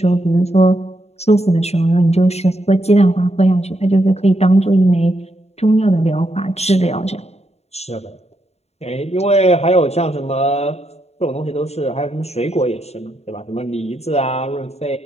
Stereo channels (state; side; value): late; right; 0.31 ms